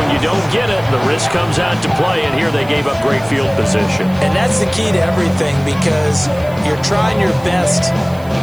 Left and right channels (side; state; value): right; noise; hiss, 24 dB below the sound